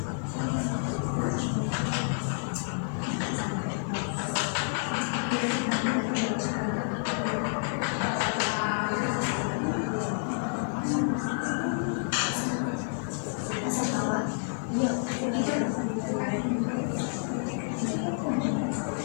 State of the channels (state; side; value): silent; right; digital silence